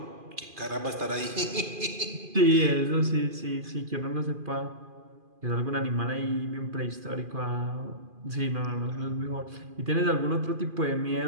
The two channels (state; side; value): late; left; 2.4 ms